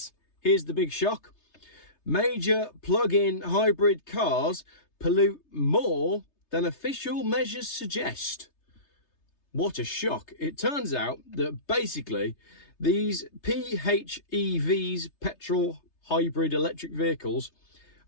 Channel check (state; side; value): late; right; 3.3 ms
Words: here's the big shock: major plug-in hybrid cars pollute more than official measures suggest. What a shock. It turns out that basically these PHEVs, petrol hybrid electric vehicles,